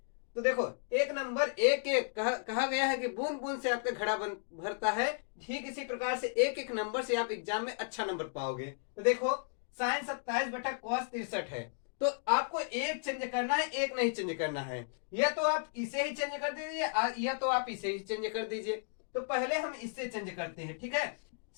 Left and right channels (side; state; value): right; silent; digital silence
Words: तो देखो, एक नंबर एक एक कहा गया है कि बूंद बूंद से आपका घड़ा भरता है, ठीक इसी प्रकार से एक एक नंबर से आप एग्जाम में अच्छा नंबर पाओगे। तो देखो, साइन 27 बटा कॉस 63 है, तो आपको एक चेंज करना है, एक नहीं चेंज करना है। या तो आप इसे ही चेंज कर दीजिए या तो आप इसे ही चेंज कर दीजिए। तो पहले हम इससे चेंज करते हैं, ठीक है।